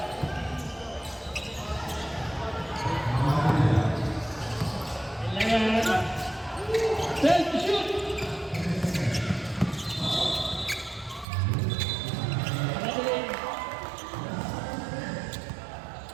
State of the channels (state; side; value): drops out; left; at 11.2 s